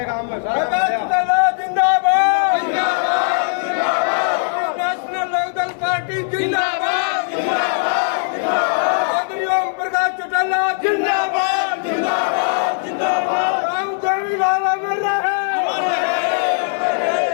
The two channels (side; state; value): right; silent; 61 dB below the other